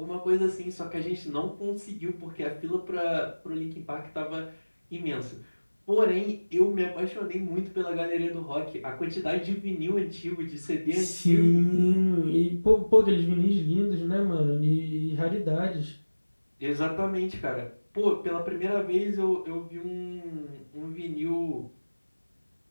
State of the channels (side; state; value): both; inverted; correlation -1.00